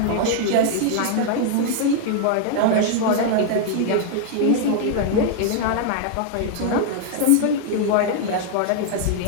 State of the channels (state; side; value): different; both; correlation 0.00